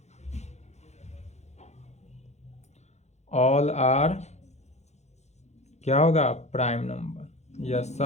... ऑल आर क्या होगा, प्राइम नंबर। यह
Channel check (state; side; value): late; right; 0.32 ms